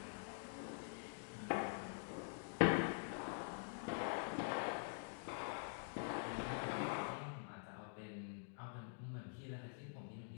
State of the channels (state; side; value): silent; right; digital silence